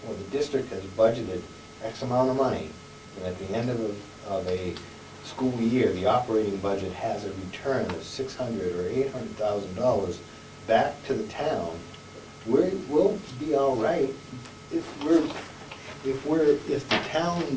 the district has budgeted X amount of money, and at the end of a school year, the operating budget has a return of $600,000 or $800,000 back to the town, we'll be all right if the town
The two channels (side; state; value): both; identical; correlation 1.00